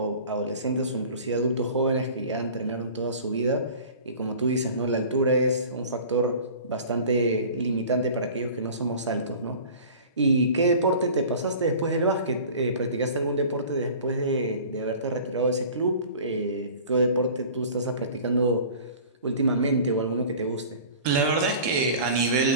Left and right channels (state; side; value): inverted; both; correlation -0.43